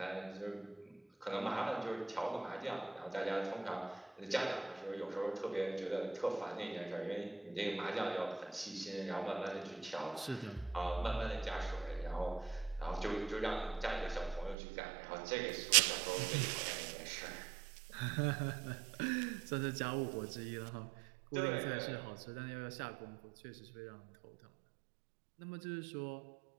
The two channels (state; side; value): drops out; left; at 14.6 s